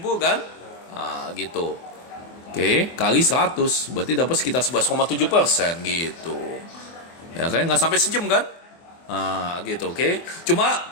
kan? Nah, gitu. Oke, kali 100 berarti dapat sekitar 11,7% gitu. Ya kan nggak sampai sejam kan? Nah, gitu, oke. Cuma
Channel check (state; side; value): late; right; 24 ms